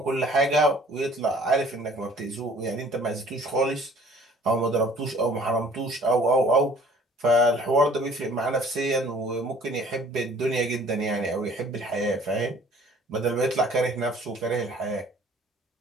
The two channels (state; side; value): normal; both; correlation 0.53